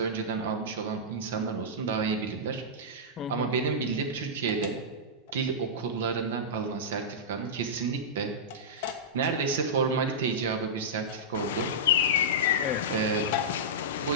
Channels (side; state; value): both; normal; correlation -0.13